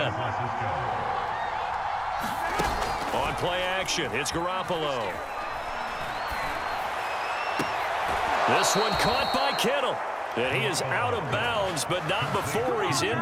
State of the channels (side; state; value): both; identical; correlation 1.00